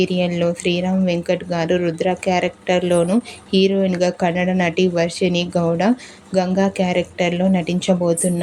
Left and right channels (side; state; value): both; identical; correlation 1.00